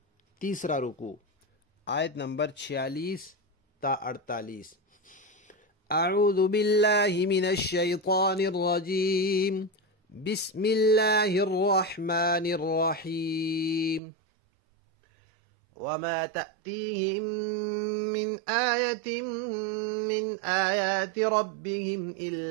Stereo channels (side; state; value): left; drops out; at 14.0 s